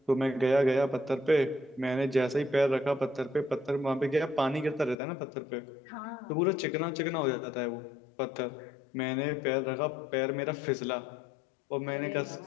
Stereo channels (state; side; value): drops out; right; at 5.0 s